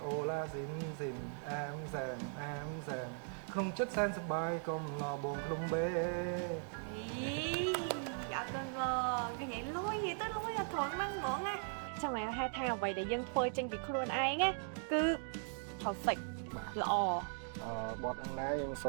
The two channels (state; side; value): silent; left; 52 dB below the other